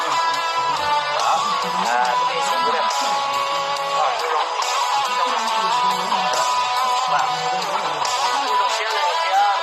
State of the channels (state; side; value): identical; both; correlation 1.00